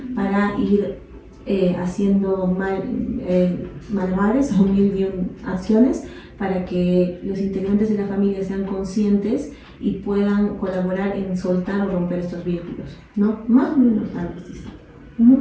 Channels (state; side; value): identical; both; correlation 1.00